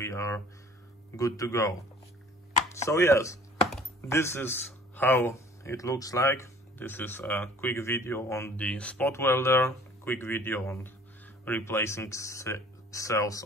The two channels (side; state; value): both; normal; correlation 0.51